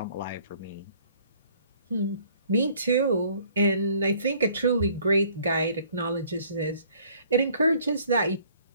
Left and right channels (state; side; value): inverted; both; correlation -0.58